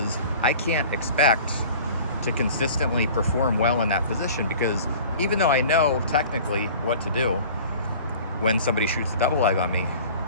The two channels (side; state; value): both; inverted; correlation -0.43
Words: I can't expect to consistently perform well in that position, because even though I know technically what to do when somebody shoots a double leg on me,